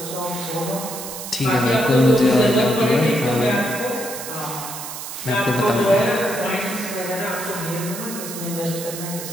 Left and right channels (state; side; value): noise; right; hiss, 9 dB below the sound